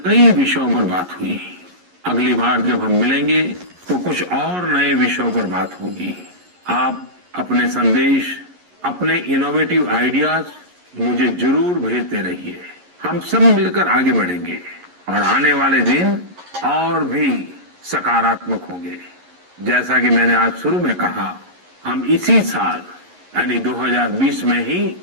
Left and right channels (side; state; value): left; late; 11 ms